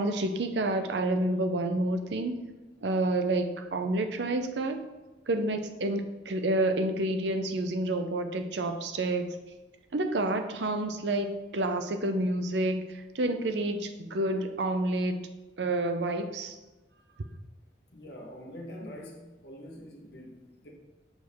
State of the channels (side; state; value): both; normal; correlation 0.34